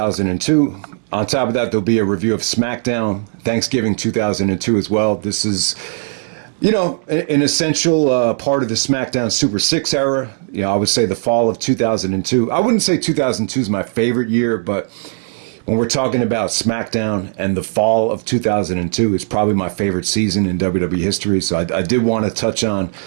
On top of that, there'll be a review of Smackdown Thanksgiving 2002 as well. This is, an essential part of the Smackdown Super 6 era. I would say the fall of 2002. I wouldn't say 2002 is my favorite year, but when we're talking about SmackDown and the fall of 2002, it's probably my favorite season in WWE history. So I did want to touch on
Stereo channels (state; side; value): silent; left; digital silence